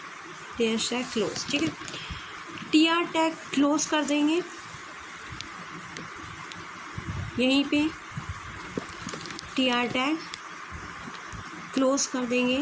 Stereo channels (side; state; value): both; identical; correlation 1.00